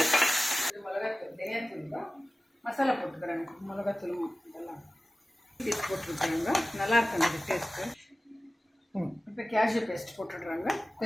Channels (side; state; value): both; normal; correlation 0.97